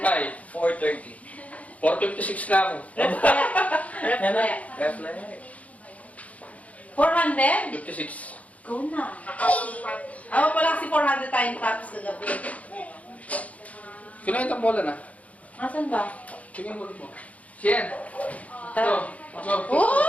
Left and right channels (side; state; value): right; late; 0.068 ms